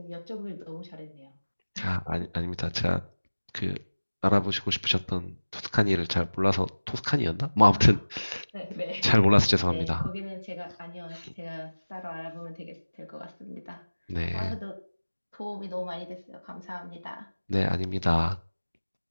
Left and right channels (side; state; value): both; inverted; correlation -1.00